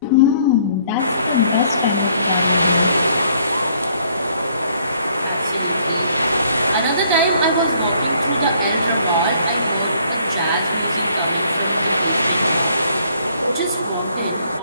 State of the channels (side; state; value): both; inverted; correlation -0.63